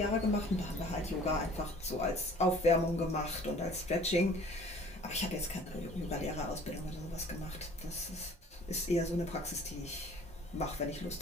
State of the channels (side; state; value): both; normal; correlation 0.51